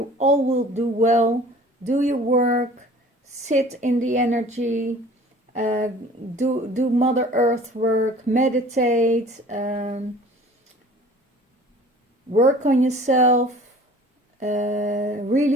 all will do well. Do your work. Sit in the energy. Do Mother Earth work. Meditate. Work on yourself.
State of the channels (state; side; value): normal; both; correlation 0.47